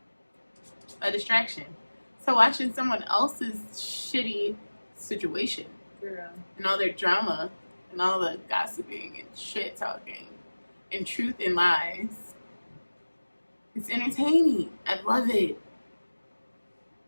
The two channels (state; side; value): inverted; both; correlation -1.00